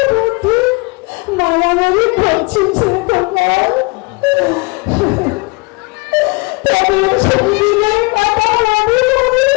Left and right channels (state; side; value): quieter; right; 28.2 dB